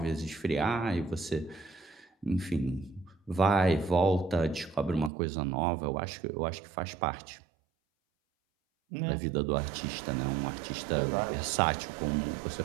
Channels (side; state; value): left; drops out; at 5.1 s